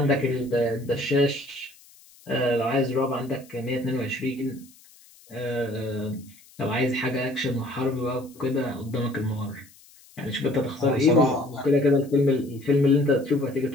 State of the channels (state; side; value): noise; left; hiss, 26 dB below the sound